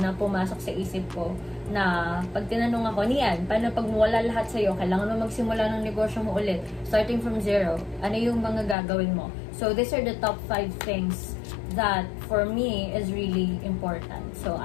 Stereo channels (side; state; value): right; drops out; at 8.8 s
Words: pumasok sa isip ko na pag tinanong ako, Nian, paano pag wala lahat sa'yo, kailangan mo magsimula ng negosyo mo ulit, starting from zero, ano yung mga gagawin mo? So these are the top 5 things that for me is really important. So